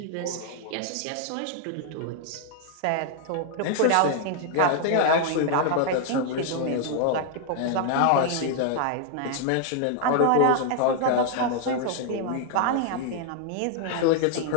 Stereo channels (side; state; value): both; different; correlation 0.00